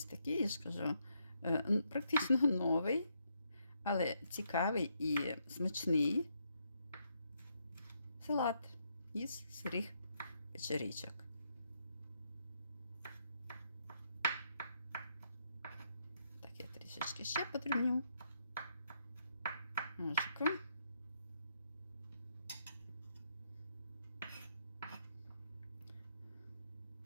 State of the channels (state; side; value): inverted; both; correlation -0.77